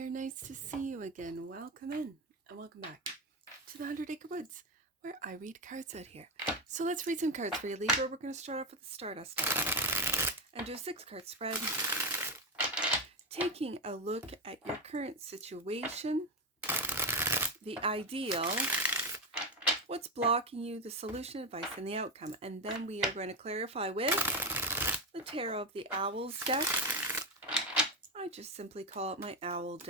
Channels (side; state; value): both; normal; correlation 0.11